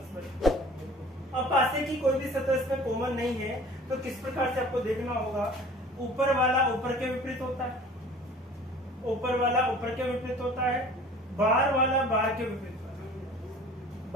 है। अब पासे की कोई भी सतह इसमें कॉमन नहीं है, तो किस प्रकार से आपको देखना होगा, ऊपर वाला ऊपर के विपरीत होता है, ऊपर वाला ऊपर के विपरीत होता है, बाहर वाला बाहर के विपरीत होता है,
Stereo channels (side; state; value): both; normal; correlation 0.46